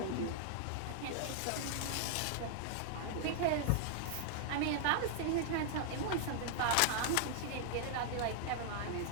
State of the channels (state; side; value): different; both; correlation -0.01